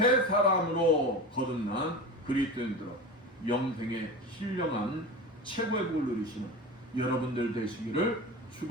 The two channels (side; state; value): both; normal; correlation 0.29